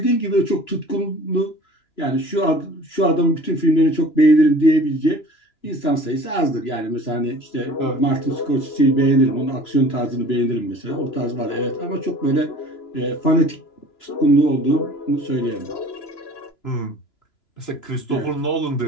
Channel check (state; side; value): late; right; 2.9 ms